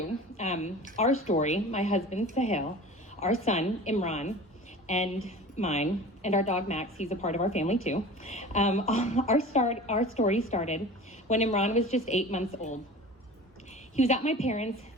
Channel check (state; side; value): normal; both; correlation 0.38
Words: our story, my husband, Sahel, our son, Imran, and mine, and our dog, Max, he's a part of our family too. Our story started when Imran was just 8 months old. He was at my parents',